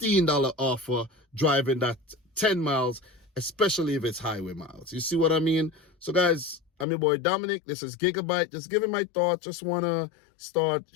offer driving that 10 miles, especially if it's highway miles. You see what I mean? So guys, I'm your boy Dominic. This is Gigabyte. Just giving my thoughts. Just want to start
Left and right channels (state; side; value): drops out; right; at 6.9 s